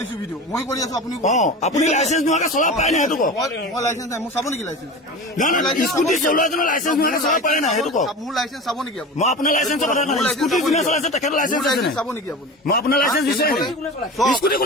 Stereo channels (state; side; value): normal; both; correlation 0.31